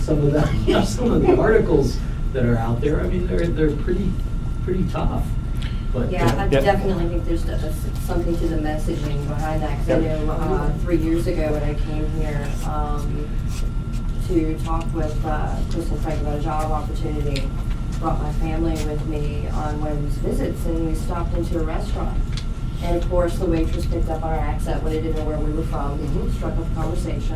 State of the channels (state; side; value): identical; both; correlation 1.00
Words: some of the, some of the articles that are out there. I mean, they're pretty tough. But, Yeah, I definitely think there's something to the messaging behind that, because I know 3 years ago when I came here to talk with Chris and Frank about a job opportunity, brought my family with me on one of these visits, and we stopped into a restaurant. And of course, the waitress picked up our accent when they didn't know where we were from, struck up a